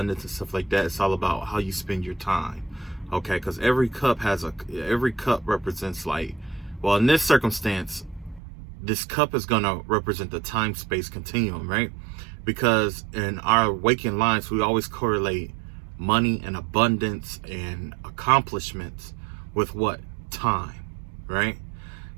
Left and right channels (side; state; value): left; drops out; at 8.4 s